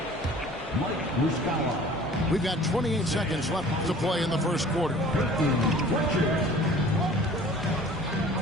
Mike Muscala. We've got 28 seconds left to play in the first quarter.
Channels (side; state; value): both; normal; correlation 0.47